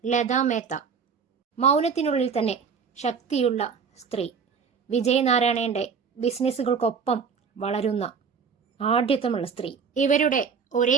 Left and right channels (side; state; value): left; quieter; 6.1 dB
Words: ലതാ മേത്ത. മൗനത്തിനുള്ളിൽ തന്നെ ശക്തിയുള്ള സ്ത്രീ. വിജയ് നാരായണന്റെ ബിസിനസ്സുകൾക്കൊപ്പം വളരുന്ന ആഢ്യത്വമുള്ള സ്ത്രീ. ഇവരുടെ